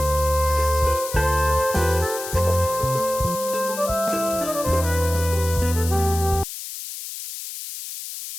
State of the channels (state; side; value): noise; left; hiss, 9 dB below the sound